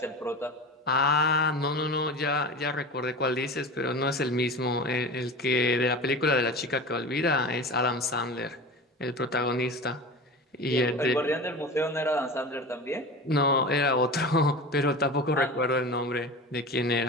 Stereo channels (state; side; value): normal; both; correlation 0.31